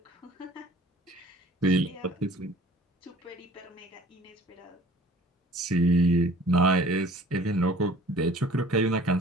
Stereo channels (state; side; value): normal; both; correlation 0.51